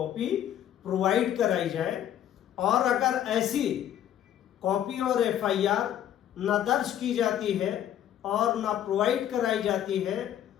प्रोवाइड कराई जाए। और अगर ऐसी कॉपी और एफआईआर न दर्ज की जाती है और न प्रोवाइड कराई जाती है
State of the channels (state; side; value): quieter; right; 10.9 dB